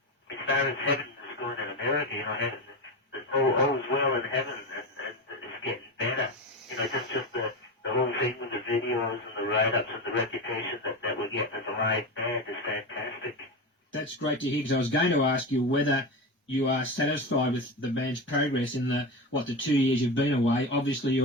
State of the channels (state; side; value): normal; both; correlation 0.21